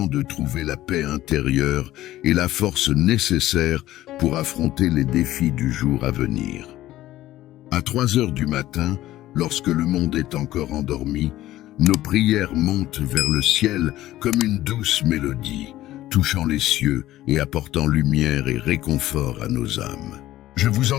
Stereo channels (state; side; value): quieter; right; 14.9 dB